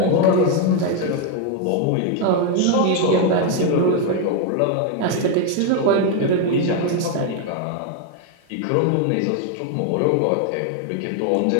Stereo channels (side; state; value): both; different; correlation 0.01